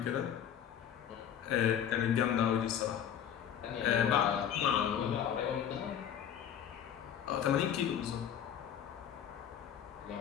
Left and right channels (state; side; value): quieter; right; 9.2 dB